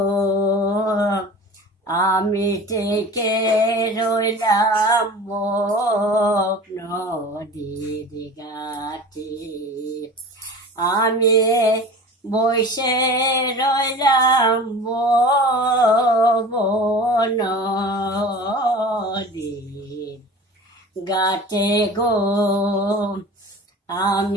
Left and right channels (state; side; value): normal; both; correlation 0.38